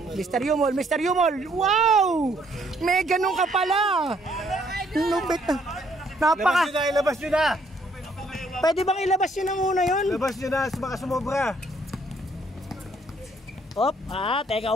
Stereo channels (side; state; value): both; normal; correlation 0.66